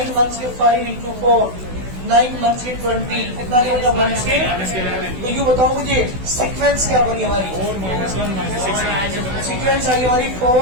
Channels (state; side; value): late; left; 16 ms